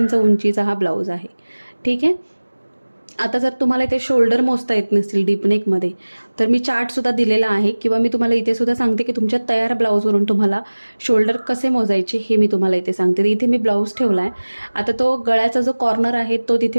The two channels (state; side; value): inverted; both; correlation -1.00